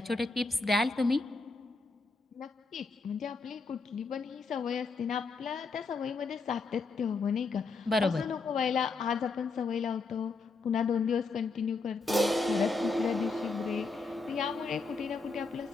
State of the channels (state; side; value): quieter; right; 4.0 dB